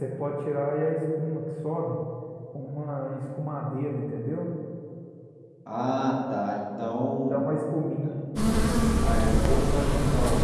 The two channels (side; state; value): both; identical; correlation 1.00